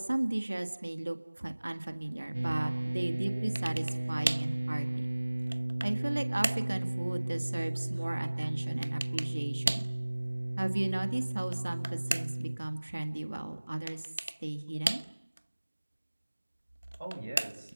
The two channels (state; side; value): inverted; both; correlation -1.00